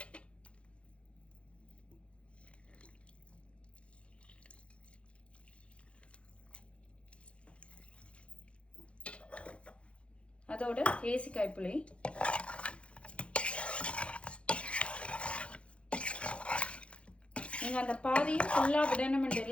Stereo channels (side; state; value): right; late; 0.060 ms